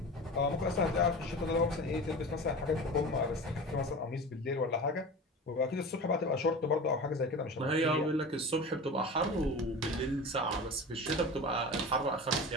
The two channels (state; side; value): normal; both; correlation 0.32